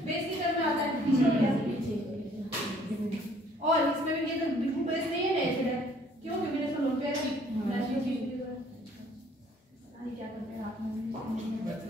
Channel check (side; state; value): both; normal; correlation 0.59